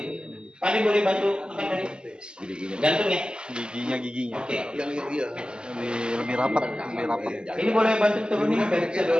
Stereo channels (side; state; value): left; late; 0.049 ms